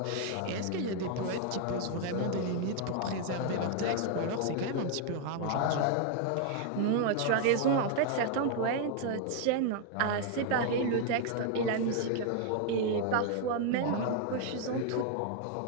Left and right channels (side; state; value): both; different; correlation 0.00